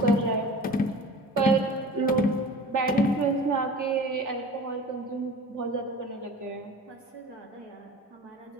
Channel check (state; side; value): normal; both; correlation 0.39